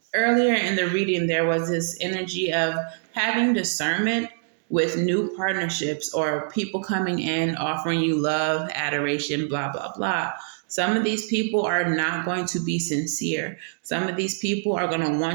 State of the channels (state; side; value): silent; left; digital silence